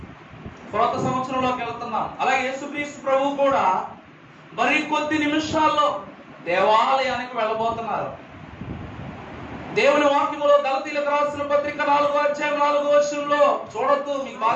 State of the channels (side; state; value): both; identical; correlation 1.00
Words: కొత్త సంవత్సరంలోకి వెళ్తున్నాం. అలాగే యేసుక్రీస్తు ప్రభువు కూడా మరికొద్ది నిమిషాల్లో దేవాలయానికి వెళ్ళబోతున్నారు. దేవుని వాక్యములో గలతీయులకు రాసిన పత్రిక 4:4 చూడొద్దు, మీకు